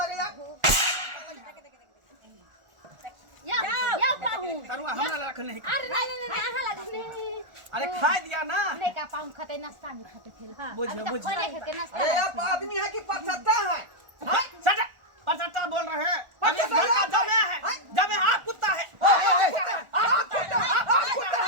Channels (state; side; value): late; left; 1.4 ms